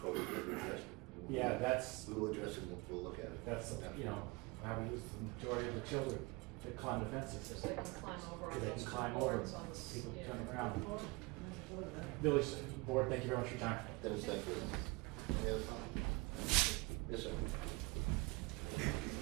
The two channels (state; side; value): quieter; left; 25.9 dB